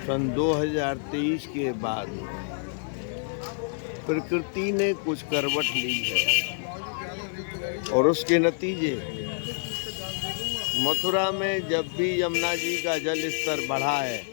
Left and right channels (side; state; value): right; silent; digital silence